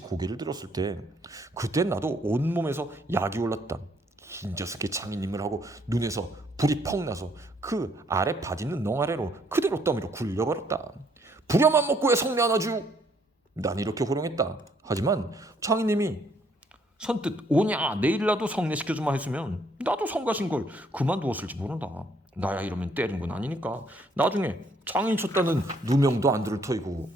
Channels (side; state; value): both; normal; correlation 0.67